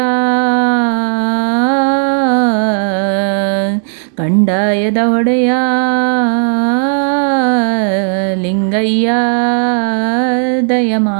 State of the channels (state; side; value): silent; left; digital silence